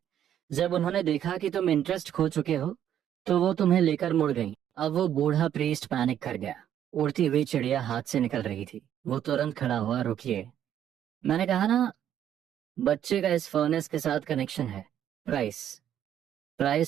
जब उन्होंने देखा कि तुम इंटरेस्ट खो चुके हो, तो वो तुम्हें लेकर मुड़ गई। अब वो बूढ़ा प्रीस्ट पैनिक कर गया। उड़ती हुई चिड़िया हाथ से निकल रही थी। वो तुरंत खड़ा हुआ, रुकिए, मैंने कहा ना, बच्चे का इस फर्नेस के साथ कनेक्शन है। प्राइस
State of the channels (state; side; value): quieter; left; 10.4 dB